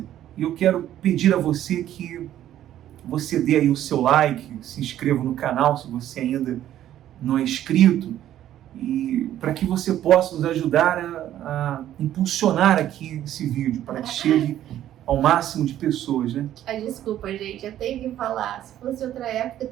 E eu quero pedir a você que você dê aí o seu like, se inscreva no canal se você ainda não é inscrito, e para que você possa nos ajudar a impulsionar aqui esse vídeo, para que chegue ao máximo de pessoas, né? Desculpa, gente, eu tenho que falar. Se fosse outra época,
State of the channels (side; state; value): left; quieter; 12.0 dB